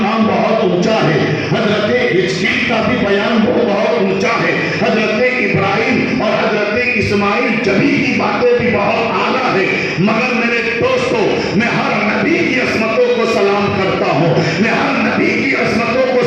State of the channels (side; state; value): both; identical; correlation 1.00